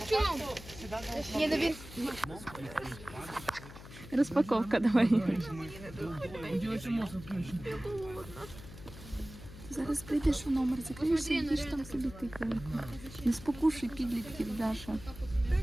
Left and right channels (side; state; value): left; noise; hum, 15 dB below the sound